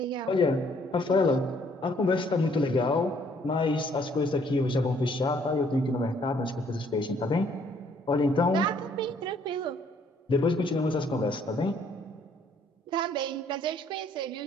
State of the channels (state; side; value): normal; both; correlation 0.64